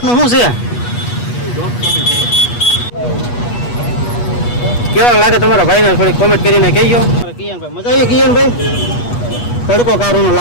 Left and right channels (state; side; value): late; right; 8.3 ms